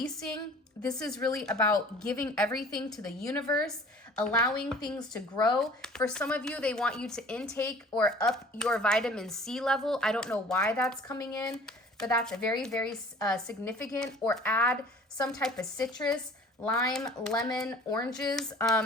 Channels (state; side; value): normal; both; correlation 0.48